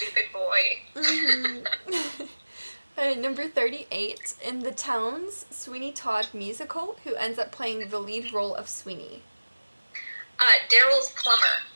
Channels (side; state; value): both; inverted; correlation -1.00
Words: boy. Mm-hmm. Number 38. In the Towns Sweeney Todd musical, who ends up playing the lead role of Sweeney? Daryl's plumber.